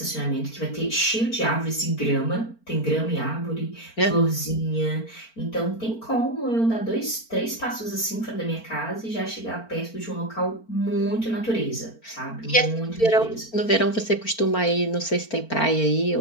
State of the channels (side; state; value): right; late; 4.4 ms